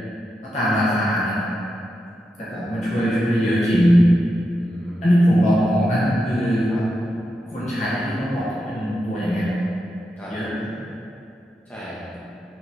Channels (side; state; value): both; normal; correlation 0.87